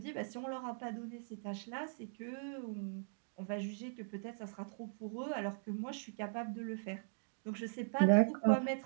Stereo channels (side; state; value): left; silent; digital silence